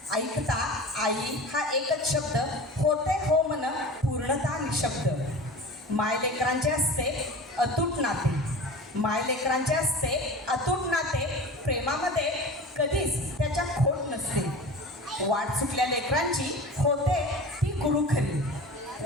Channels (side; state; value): both; normal; correlation 0.35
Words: ऐकता आई हा एकच शब्द, होते हो मन पूर्णता निशब्द. मायलेकरांचे असते अतूट नाते, मायलेकरांचे असते अतूट नाते, प्रेमामध्ये कधीच त्याच्या खोट नसते. वाट चुकल्या लेकरांची होते ती गुरु खरी,